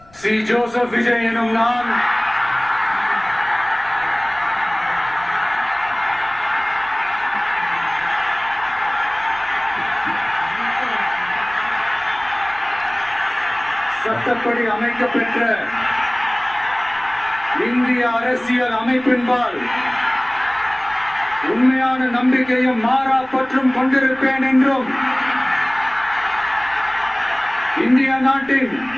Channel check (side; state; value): left; noise; rumble, 27 dB below the sound